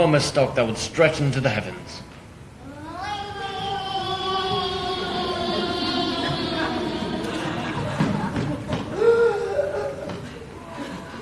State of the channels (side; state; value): both; identical; correlation 1.00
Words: stalk that would stretch into the heavens.